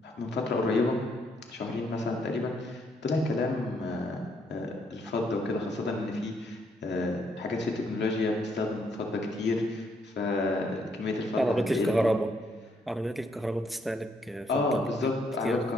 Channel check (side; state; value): both; normal; correlation 0.72